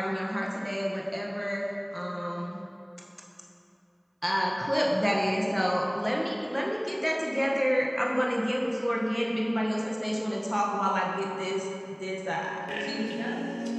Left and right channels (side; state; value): both; identical; correlation 1.00